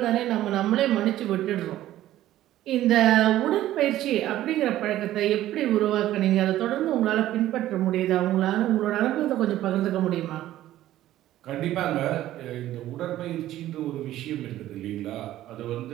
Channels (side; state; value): left; quieter; 13.9 dB